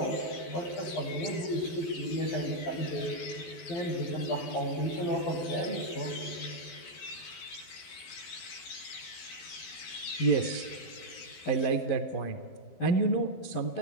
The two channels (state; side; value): late; right; 12 ms